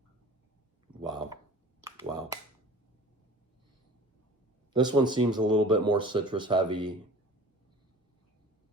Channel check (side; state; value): both; normal; correlation 0.43